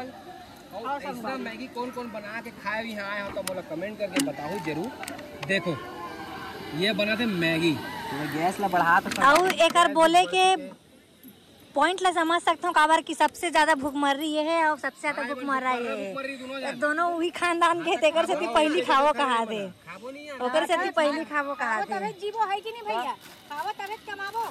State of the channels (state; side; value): identical; both; correlation 1.00